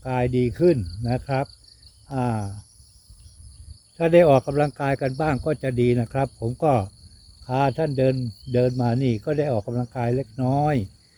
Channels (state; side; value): identical; both; correlation 1.00